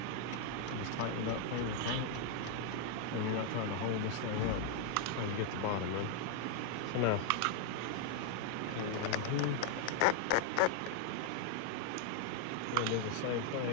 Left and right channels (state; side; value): different; both; correlation 0.00